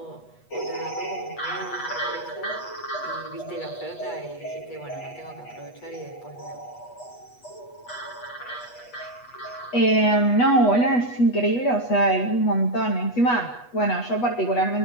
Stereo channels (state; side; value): late; right; 8.2 ms